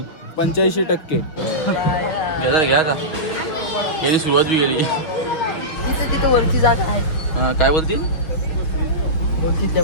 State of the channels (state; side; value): late; right; 6.2 ms